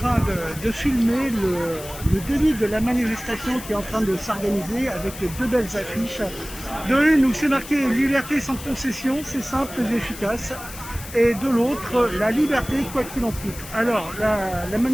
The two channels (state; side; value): noise; left; hiss, 14 dB below the sound